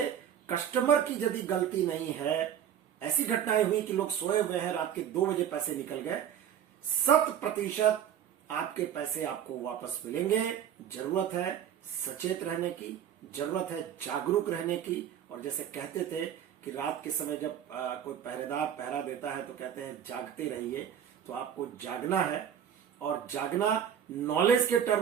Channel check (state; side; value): quieter; left; 9.3 dB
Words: कस्टमर की यदि गलती नहीं है, ऐसी घटनाएं हुई कि लोग सोए हुए हैं, रात के 2 बजे पैसे निकल गए, 100% आपके पैसे आपको वापस मिलेंगे। जरूरत है सचेत रहने की, जरूरत है जागरूक रहने की। और जैसे कहते थे कि रात के समय जब कोई पहरेदार पहरा देता है तो कहते हैं जागते रहिए, तो आपको जागना है। और जागना नॉलेज के